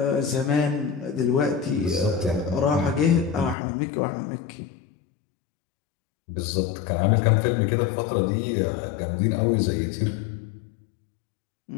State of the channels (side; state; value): right; drops out; at 3.6 s